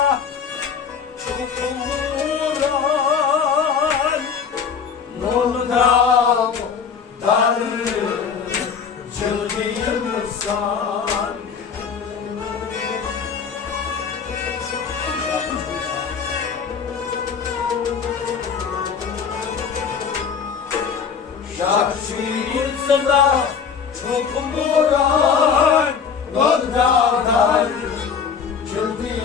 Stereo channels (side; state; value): right; quieter; 6.5 dB